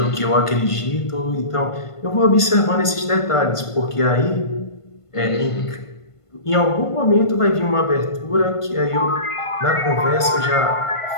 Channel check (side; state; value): right; late; 1.5 ms